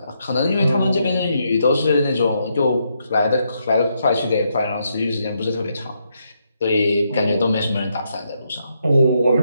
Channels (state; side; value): inverted; both; correlation -0.78